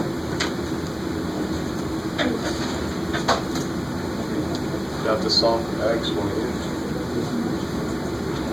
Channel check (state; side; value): noise; left; hiss, 24 dB below the sound